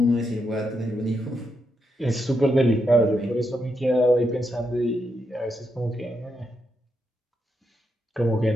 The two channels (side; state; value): both; normal; correlation 0.82